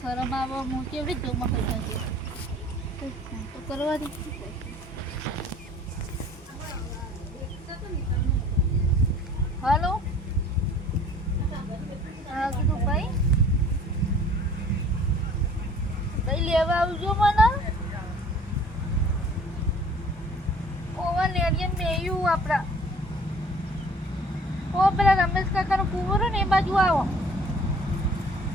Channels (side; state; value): both; normal; correlation 0.51